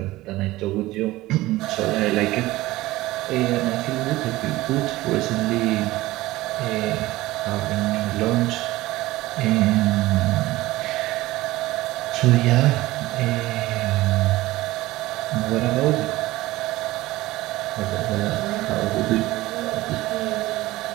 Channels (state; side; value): quieter; left; 18.0 dB